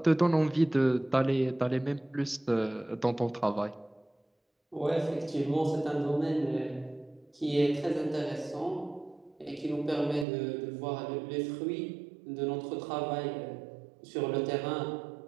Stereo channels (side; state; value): left; drops out; at 10.2 s